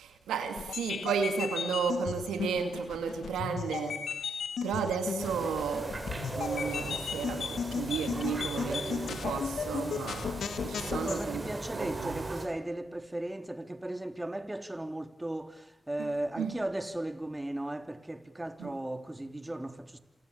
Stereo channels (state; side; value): normal; both; correlation 0.78